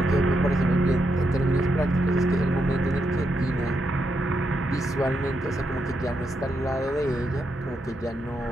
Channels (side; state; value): both; normal; correlation 0.82